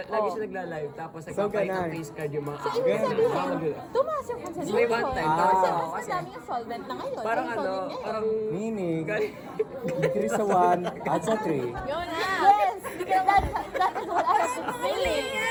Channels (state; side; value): identical; both; correlation 1.00